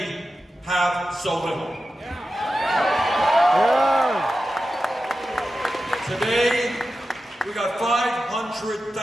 have so little. Today, we got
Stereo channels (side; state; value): both; normal; correlation 0.92